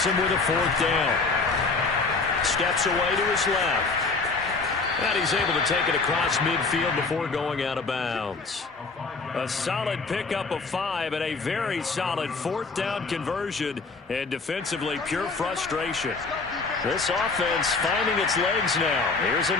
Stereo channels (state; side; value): quieter; right; 4.1 dB